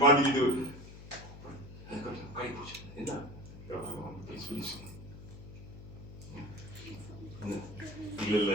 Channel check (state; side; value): noise; left; hum, 14 dB below the sound